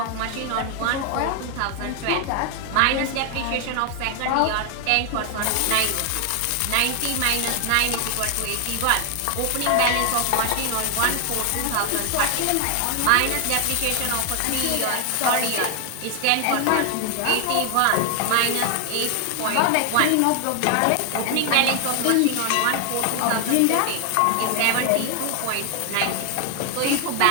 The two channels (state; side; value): different; both; correlation 0.00